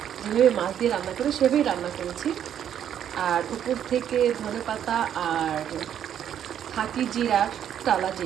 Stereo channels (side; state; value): left; quieter; 9.7 dB